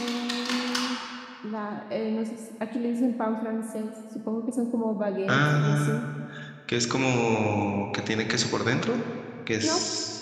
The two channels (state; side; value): identical; both; correlation 1.00